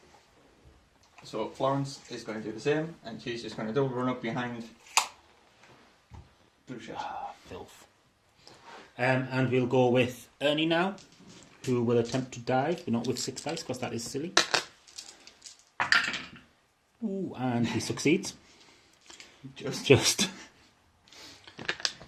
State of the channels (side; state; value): both; identical; correlation 1.00